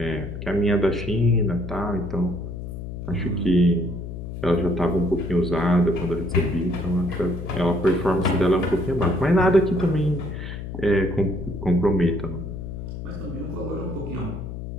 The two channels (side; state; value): left; noise; hum, 8 dB below the sound